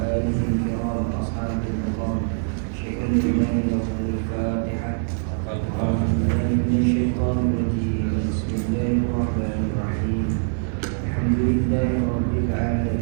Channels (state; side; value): silent; left; digital silence